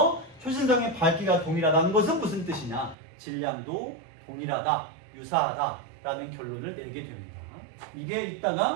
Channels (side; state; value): left; drops out; at 3.0 s